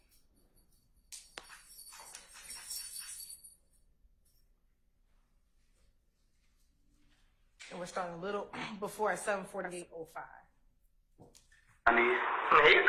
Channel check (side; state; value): both; identical; correlation 1.00